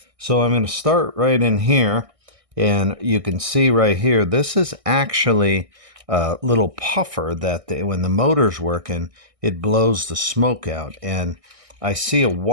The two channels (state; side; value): late; left; 1.6 ms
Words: So I'm going to start right in here, and you can see right here, this is actually a little puffer that when the motor's working, it blows the smoke out. And I see a